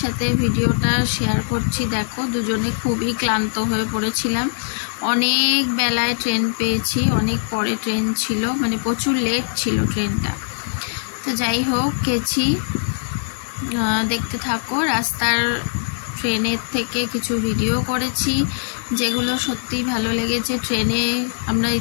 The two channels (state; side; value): silent; right; digital silence